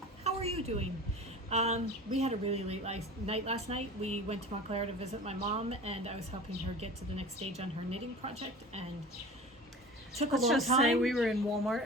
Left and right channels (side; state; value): both; normal; correlation 0.37